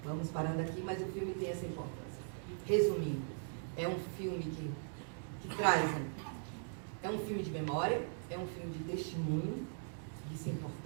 vamos parando aqui, mas o filme tem essa importância. Resumindo, é um filme que traz, é um filme de memória, é um filme de testemunho. Isso é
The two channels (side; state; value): left; silent; digital silence